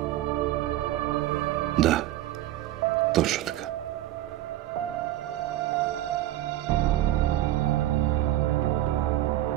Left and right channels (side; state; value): left; quieter; 14.5 dB